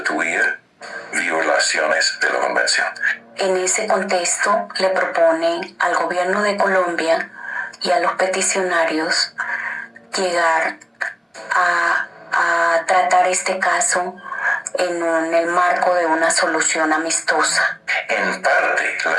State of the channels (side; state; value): both; identical; correlation 1.00